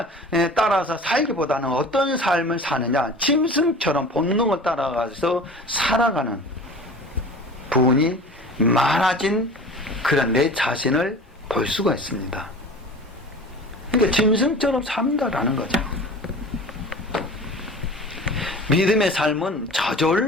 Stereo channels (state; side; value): normal; both; correlation 0.39